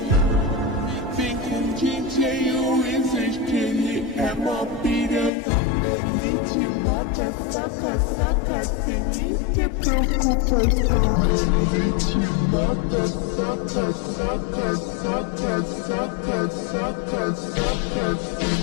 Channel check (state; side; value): drops out; right; at 5.3 s